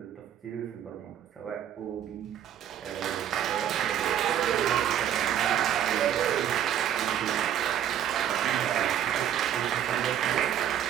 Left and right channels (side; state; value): left; quieter; 10.2 dB